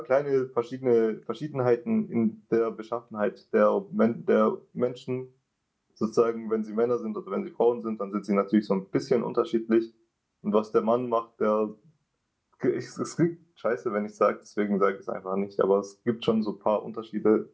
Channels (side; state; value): both; identical; correlation 1.00